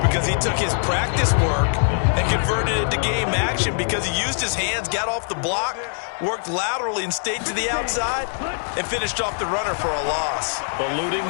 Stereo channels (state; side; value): silent; right; 64 dB below the other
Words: he took his practice work and converted it to game action because he used his hands, got off the block, worked laterally and stayed to the outside, and finished off the runner for a loss. Eluding